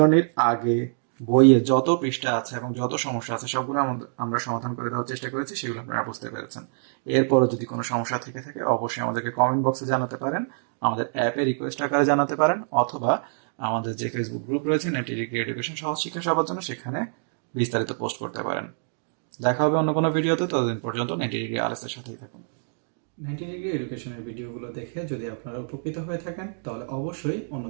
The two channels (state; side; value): silent; left; digital silence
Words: আগে বইয়ে যত পৃষ্ঠা আছে এবং যত সমস্যা আছে সবগুলো আমরা সমাধান করে দেওয়ার চেষ্টা করেছি, সেগুলো আপনারা বুঝতে পেরেছেন। এরপরও যদি কোনো সমস্যা থেকে থাকে অবশ্যই আমাদেরকে কমেন্ট বক্সে জানাতে পারেন, আমাদের অ্যাপে রিকোয়েস্ট আকারে জানাতে পারেন, অথবা আমাদের যে ফেসবুক গ্রুপ রয়েছে নেটি ডিগ্রি এডুকেশন সহজ শিক্ষা সবার জন্য, সেখানে বিস্তারিত পোস্ট করতে পারেন। দেখা হবে অন্য কোনো ভিডিওতে, ততদিন পর্যন্ত নেটি ডিগ্রি আলএস এর সাথেই থাকুন। নেটি ডিগ্রি এডুকেশনের ভিডিওগুলো দেখে যদি আপনারা উপকৃত হয়ে থাকেন তাহলে অবশ্যই